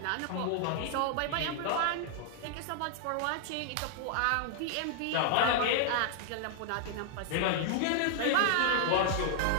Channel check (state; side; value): different; both; correlation 0.00